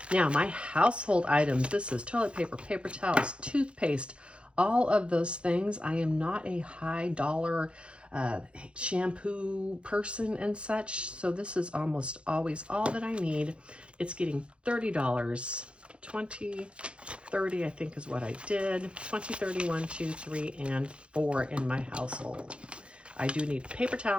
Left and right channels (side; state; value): left; late; 0.058 ms